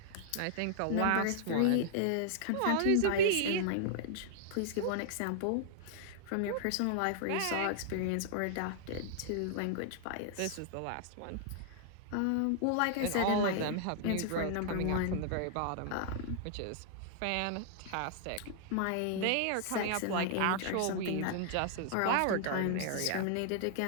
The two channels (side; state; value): both; different; correlation -0.01